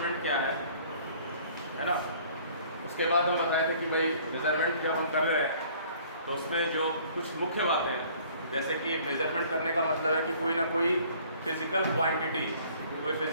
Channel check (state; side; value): inverted; both; correlation -0.54